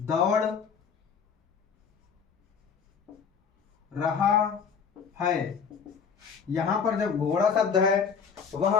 रहा है। यहां पर जब घोड़ा शब्द है वह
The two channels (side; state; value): right; quieter; 6.4 dB